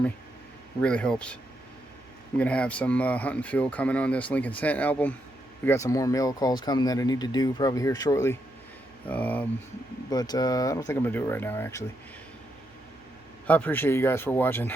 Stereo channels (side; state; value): right; noise; hum, 29 dB below the sound